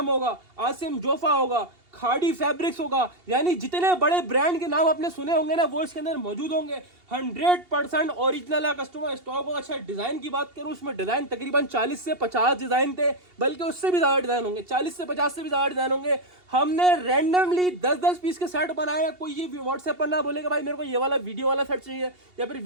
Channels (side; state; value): left; late; 2.8 ms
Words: होगा, आसिम जोफा होगा, खाड़ी फैब्रिक्स होगा, यानी जितने बड़े ब्रांड के नाम आपने सुने होंगे ना वो इसके अंदर मौजूद होंगे। 100% ओरिजिनल है। कस्टमर स्टॉक होगा। अच्छा डिजाइन की बात करूं, उसमें डिजाइन तकरीबन 40 से 50 डिजाइन थे, बल्कि उससे भी ज्यादा डिजाइन होंगे, 40 से 50 से भी ज्यादा डिजाइन होंगे। हमने रैंडमली 10-10 पीस के सेट बनाए। कोई ये व्हाट्सएप पर ना बोलेगा भाई मेरे को ये वाला वीडियो वाला सेट चाहिए या फिर